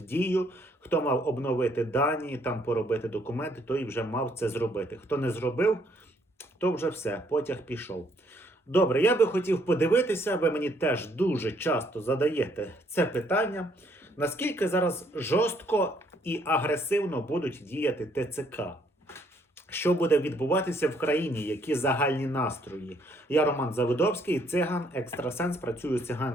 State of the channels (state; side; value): normal; both; correlation 0.67